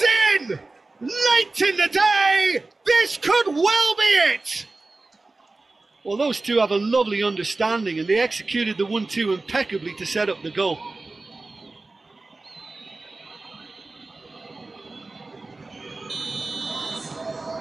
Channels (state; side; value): quieter; left; 3.4 dB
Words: in! Late in the day! This could well be it! Well, those two have a lovely understanding, and they executed the 1-2 impeccably to set up the goal.